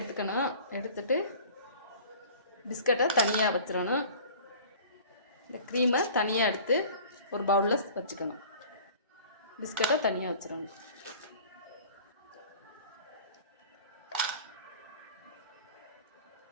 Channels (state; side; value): inverted; both; correlation -0.45